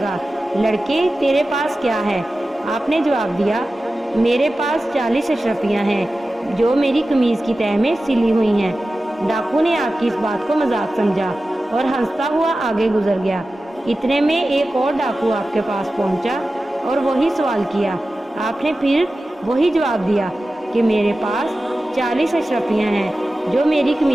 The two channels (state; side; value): normal; both; correlation 0.94